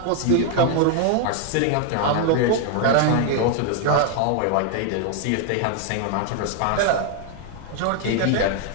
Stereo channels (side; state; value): both; different; correlation 0.00